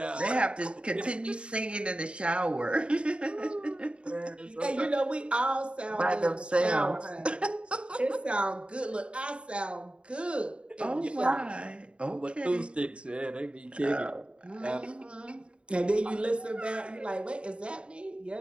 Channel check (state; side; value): late; left; 0.056 ms